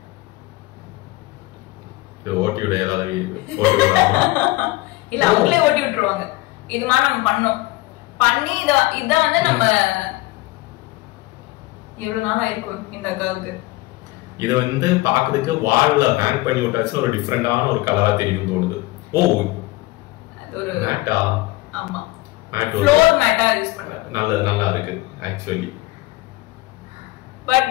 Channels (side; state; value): right; quieter; 19.9 dB